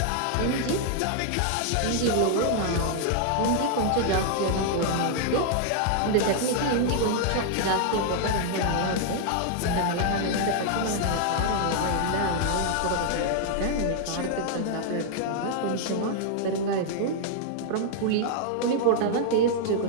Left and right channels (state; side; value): different; both; correlation 0.00